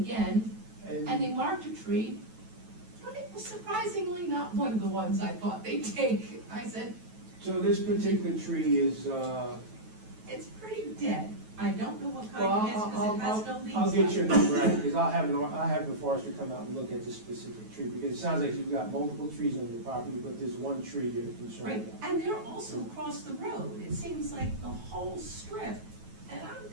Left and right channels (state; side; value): late; left; 9.2 ms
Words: and they marked a tree, but it was surprisingly not one of the ones I thought they'd take. I said, So this particular tree is, it's pretty dead. I don't know what well, kind it is, because it has no leaves I'll get your left. number out, because I'll have the forester come out and look at this specific tree, because it sounds like you've got multiple trees on your property, but there's one tree you're concerned Right, about. and they're also across the road. It seems like the whole strip. And I'm